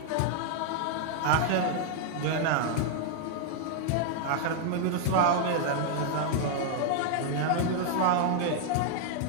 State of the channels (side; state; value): both; different; correlation 0.00